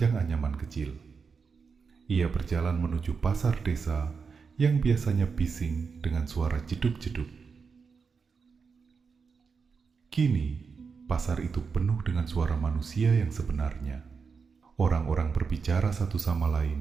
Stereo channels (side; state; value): left; quieter; 5.4 dB